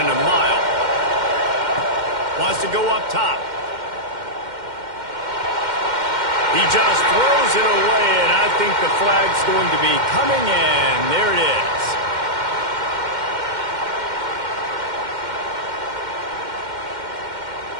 a mile. Wants to go up top. He just throws it away, and I think the flag's going to be coming in. There it is.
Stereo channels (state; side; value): late; left; 2.1 ms